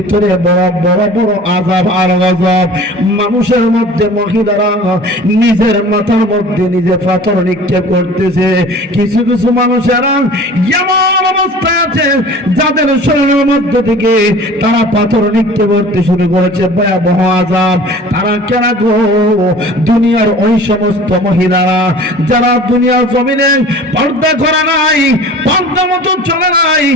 বড় বড় বড় আযাব আর গজব। মানুষের মধ্যে মহিলারা নিজের মাথার মধ্যে নিজে পাথর নিক্ষেপ করতেছে। কিছু কিছু মানুষেরা এমন অবস্থায় আছে যাদের শরীরের মধ্যে থেকে তারা পাথর নিক্ষেপ করতে শুরু করেছে। ভয়াবহ আযাব। তারা কেন গো? দুনিয়ার ওই সমস্ত মহিলারা যারা দুনিয়ার জমিনে পর্দা করে নাই, পর্দা মতো চলে নাই,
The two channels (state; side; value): normal; both; correlation 0.43